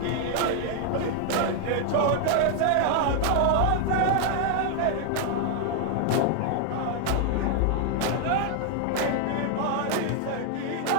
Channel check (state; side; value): different; both; correlation 0.00